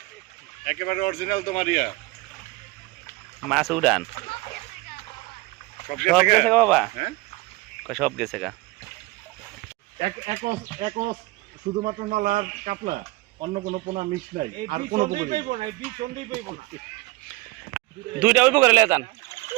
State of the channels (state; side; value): quieter; left; 21.6 dB